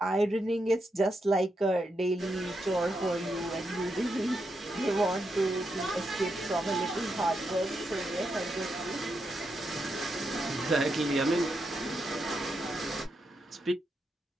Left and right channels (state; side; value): normal; both; correlation 0.83